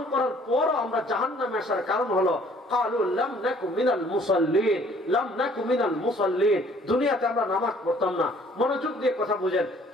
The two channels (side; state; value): both; normal; correlation 0.58